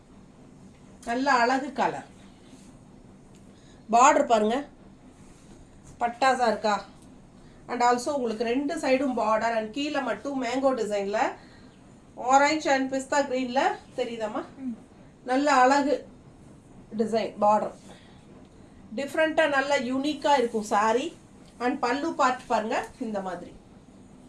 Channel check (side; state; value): both; identical; correlation 1.00